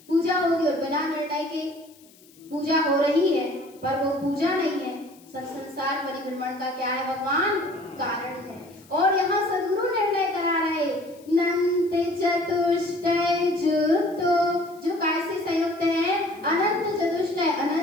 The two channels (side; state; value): left; noise; hiss, 27 dB below the sound